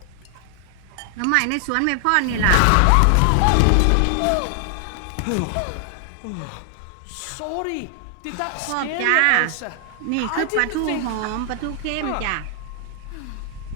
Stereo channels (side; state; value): both; different; correlation 0.00